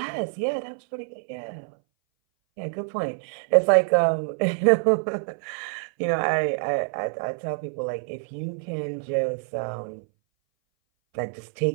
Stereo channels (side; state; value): left; silent; 59 dB below the other